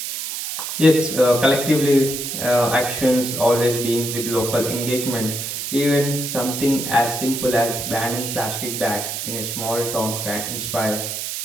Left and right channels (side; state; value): right; noise; hiss, 5 dB below the sound